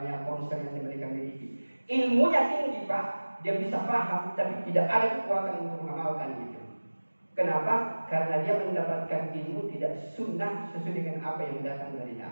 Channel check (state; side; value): inverted; both; correlation -1.00